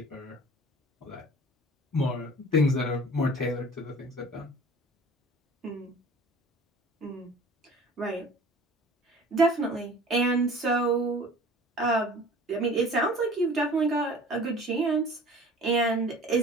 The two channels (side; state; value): both; normal; correlation 0.45